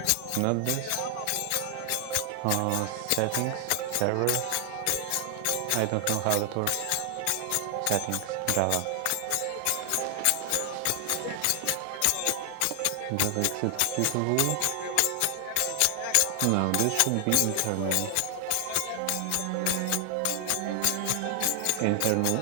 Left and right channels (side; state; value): both; different; correlation 0.00